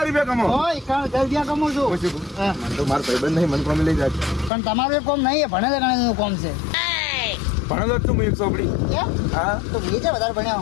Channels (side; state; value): right; drops out; at 4.5 s